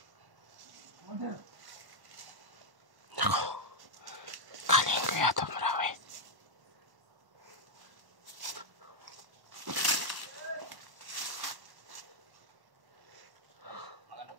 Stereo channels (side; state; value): left; late; 1.1 ms